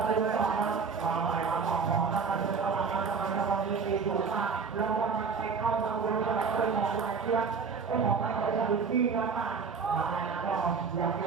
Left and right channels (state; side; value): quieter; left; 5.4 dB